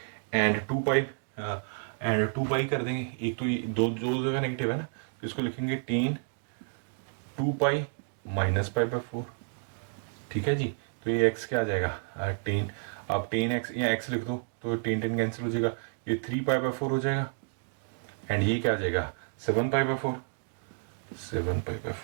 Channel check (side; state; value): left; silent; digital silence